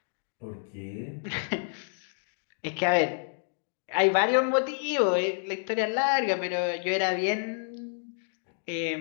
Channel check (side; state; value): right; silent; digital silence